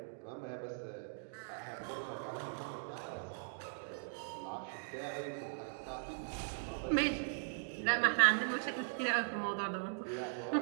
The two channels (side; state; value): left; silent; digital silence